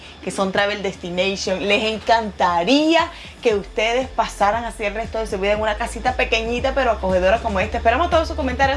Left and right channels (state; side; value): identical; both; correlation 1.00